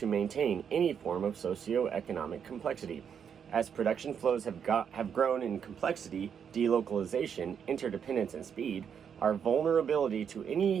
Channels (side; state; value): left; quieter; 7.6 dB